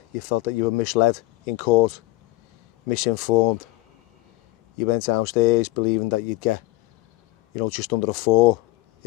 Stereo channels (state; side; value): quieter; right; 19.7 dB